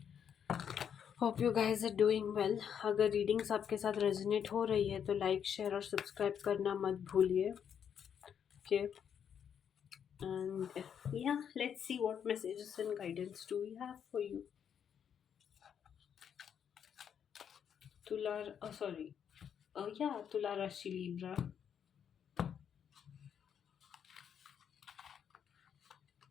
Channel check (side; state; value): right; quieter; 8.2 dB